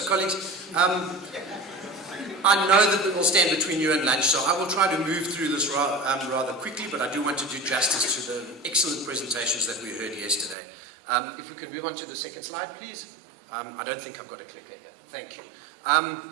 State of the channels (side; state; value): left; drops out; at 10.6 s